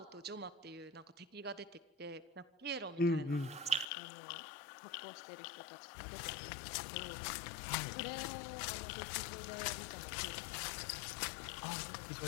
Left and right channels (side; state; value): right; drops out; at 3.9 s